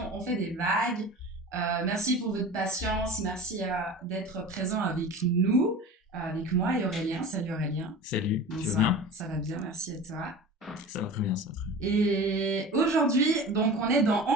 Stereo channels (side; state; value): both; normal; correlation 0.35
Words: On fait des vagues. Merci pour votre patience, merci d'être présent avec nous, avec moi et Aurélien. Salut Aurélien. Salut, tu vas Bonsoir, bien? ça va bien, merci à toi. Ça va très bien, ça va très bien. Et aujourd'hui, donc on est dans On